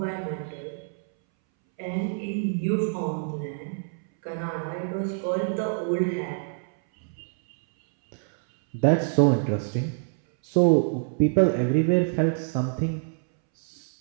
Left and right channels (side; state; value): left; silent; 61 dB below the other